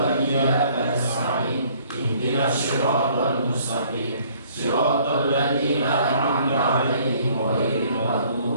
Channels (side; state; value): both; inverted; correlation -0.59